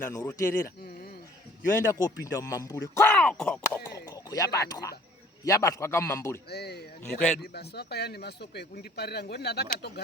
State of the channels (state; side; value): normal; both; correlation 0.54